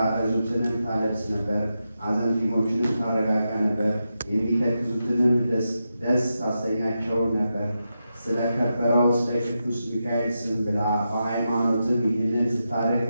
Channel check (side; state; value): both; inverted; correlation -0.88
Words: ታለብስ ነበር፣ አዘንቲሞችንም ታረጋጋ ነበር፣ የሚተክዙትንም ደስ ታሰኛቸው ነበር። ስለከበረው ስለ ቅዱስ ሚካኤል ስም ብላ በሃይማኖትም ይህንን ስታደርግ